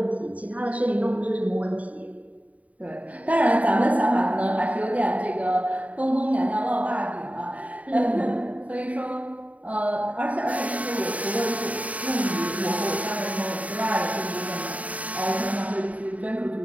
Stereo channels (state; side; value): late; left; 0.069 ms